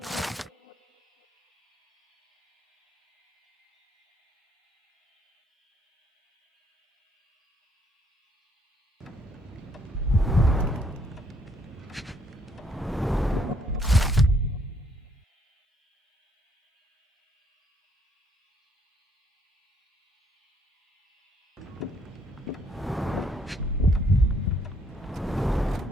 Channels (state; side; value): normal; both; correlation 0.68